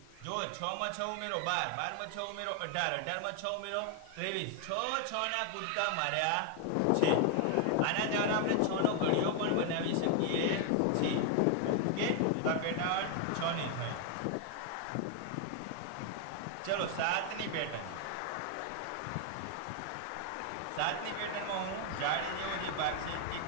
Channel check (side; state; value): both; different; correlation 0.00